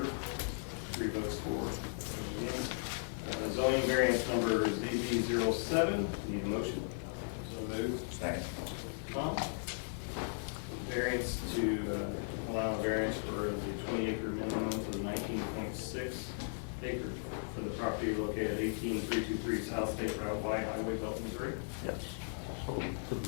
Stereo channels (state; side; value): silent; right; digital silence